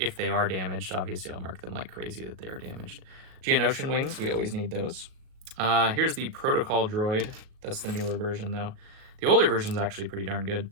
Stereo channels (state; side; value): late; left; 38 ms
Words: they are damaged. Obviously, I'll mark them like crazy that they are damaged. Geonosian wings, we always need those. Here's the Protocol droid. That's the newer version, though. The older version's actually pretty darn good.